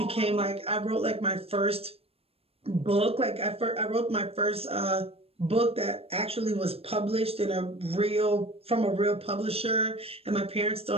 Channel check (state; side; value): late; left; 0.28 ms